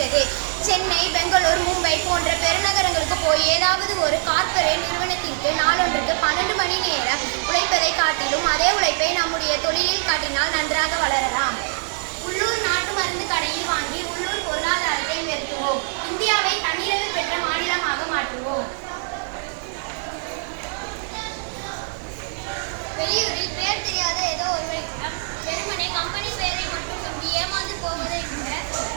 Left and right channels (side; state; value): left; silent; digital silence